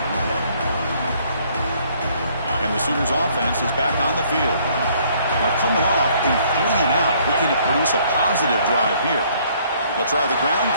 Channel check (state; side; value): inverted; both; correlation -0.63